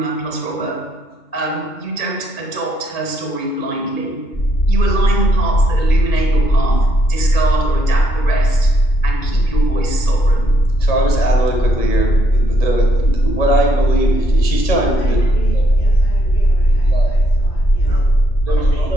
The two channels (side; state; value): right; late; 1.9 ms